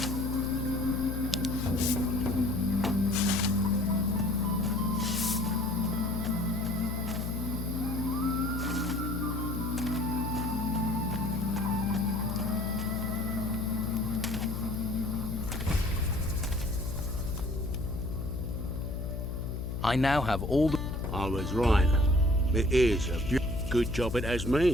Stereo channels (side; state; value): left; noise; hum, 4 dB below the sound